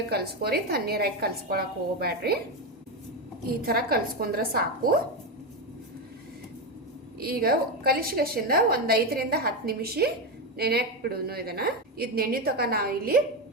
ಕಲಿಸ್ಕೋರಿ, ತಣ್ಣೀರಾಗಿ ಕಲಿಸ್ಕೊಳಕ್ಕೆ ಹೋಗ್ಬೇಡ್ರಿ. ಈ ಥರ ಕಲಿಸ್ಕೊಂಡ್ರೆ ಸಾಕು. ಈಗ ಕಲಿಸಿಗಷ್ಟಿಂದ ಒಂದು 5 ರಿಂದ 10 ನಿಮಿಷ ನೆನೆಯಕ್ಕೆ ಬಿಡೋನು. ಇದು ನೆನೆ ತಕ ನಾವು ಇಲ್ಲಿ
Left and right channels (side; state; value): both; normal; correlation 0.11